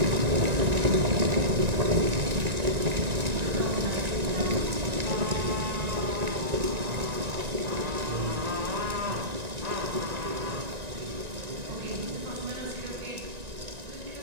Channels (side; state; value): left; late; 1.9 ms